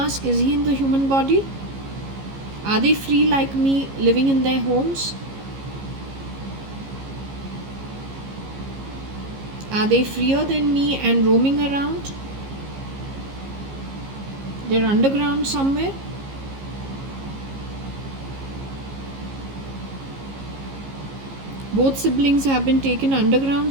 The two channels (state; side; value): late; left; 15 ms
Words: Is he in the human body? Are they free like me, living in their homes? Are they freer than me and roaming around? They're underground somewhere? Both siblings have been taken